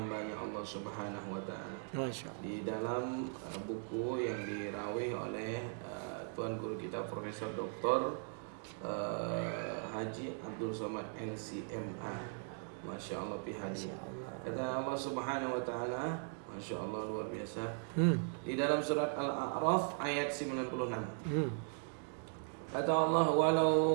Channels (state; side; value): silent; left; 52 dB below the other